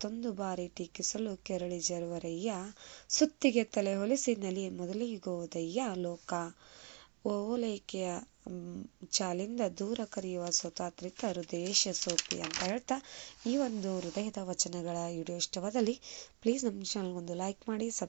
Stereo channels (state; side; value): quieter; left; 34.2 dB